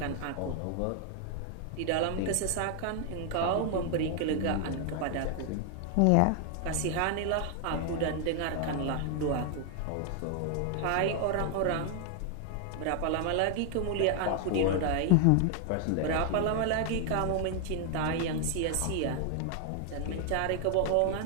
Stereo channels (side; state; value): both; different; correlation 0.00